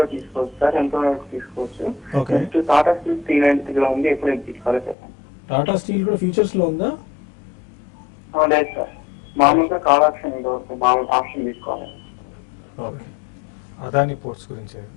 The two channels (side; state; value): right; drops out; at 5.0 s